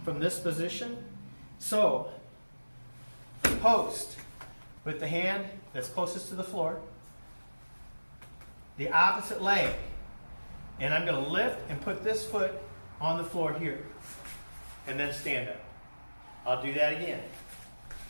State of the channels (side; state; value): both; inverted; correlation -1.00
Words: from this position. So, post with the hand that's closest to the floor, the opposite leg, and I'm going to lift and put this foot on the floor here, and then stand up. I'll do that again.